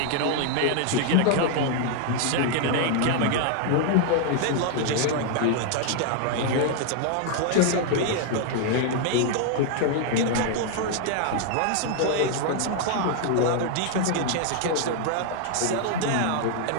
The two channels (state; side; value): different; both; correlation 0.00